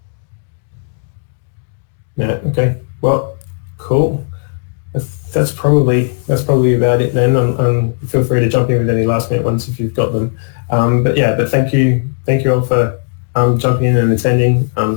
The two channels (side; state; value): right; silent; digital silence